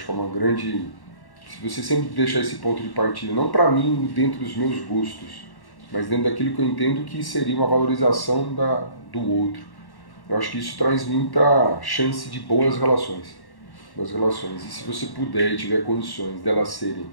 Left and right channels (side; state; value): right; late; 1.1 ms